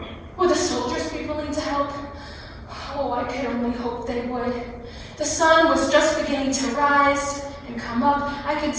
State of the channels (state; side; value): identical; both; correlation 1.00